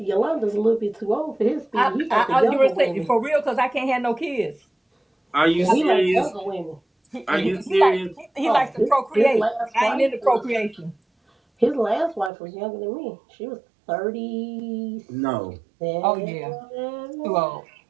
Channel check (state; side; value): drops out; left; at 12.3 s